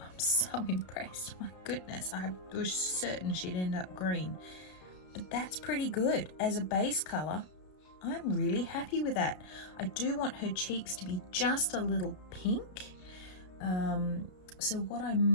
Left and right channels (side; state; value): right; late; 33 ms